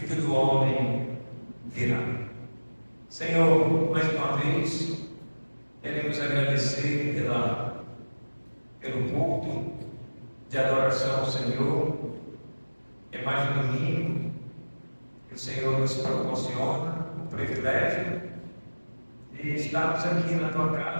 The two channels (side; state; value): both; inverted; correlation -1.00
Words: do Homem virá. Senhor, mais uma vez, queremos agradecer pelo culto de adoração ao Senhor. É mais um domingo que o Senhor nos proporciona o privilégio de estarmos aqui na tua